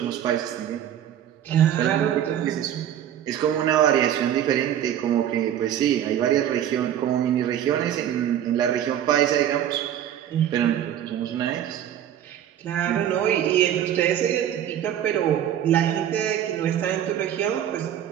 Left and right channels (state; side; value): quieter; left; 10.5 dB